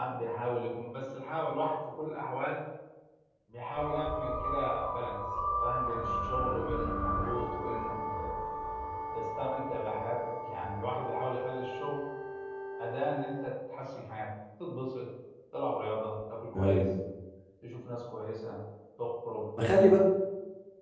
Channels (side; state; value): both; identical; correlation 1.00